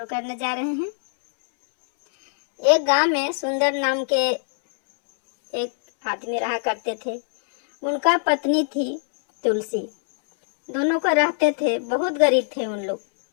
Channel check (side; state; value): right; silent; 64 dB below the other